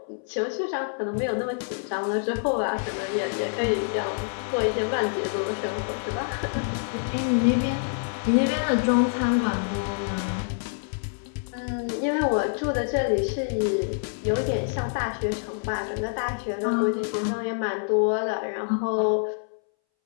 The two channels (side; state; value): right; silent; 61 dB below the other